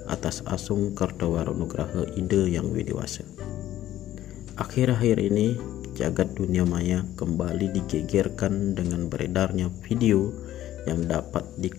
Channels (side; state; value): right; quieter; 13.2 dB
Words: atas asung Kartawaro Nugraha Ide yang widiwasa. Akhir-akhir ini jagat dunia maya kembali digegerkan dengan beredarnya video yang dapat